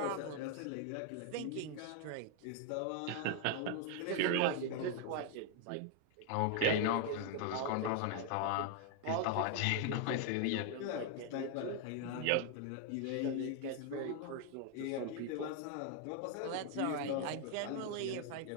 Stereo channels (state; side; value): different; both; correlation 0.00